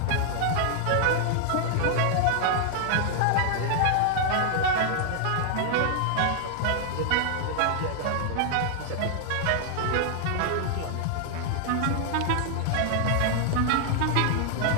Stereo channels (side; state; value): both; different; correlation 0.00